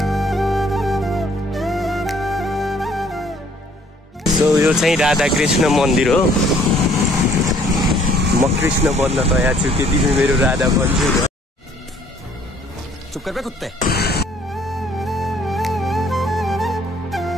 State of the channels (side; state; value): both; normal; correlation 0.60